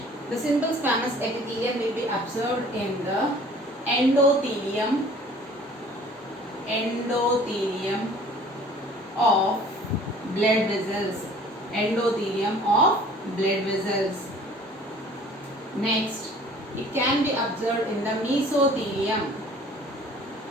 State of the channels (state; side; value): normal; both; correlation 0.50